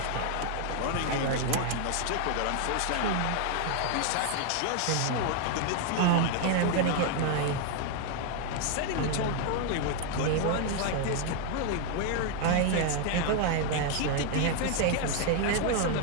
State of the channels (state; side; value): different; both; correlation 0.00